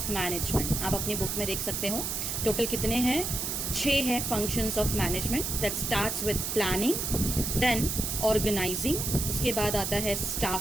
management. आप अपनी बुक में देख सकते हो टोटल कितने हैं। 6 है functions of management. That starts with planning, then organising, उसके बाद आता है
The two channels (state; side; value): noise; right; hiss, 2 dB below the sound